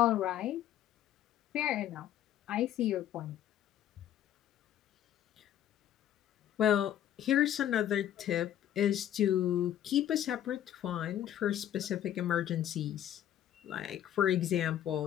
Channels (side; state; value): right; quieter; 11.2 dB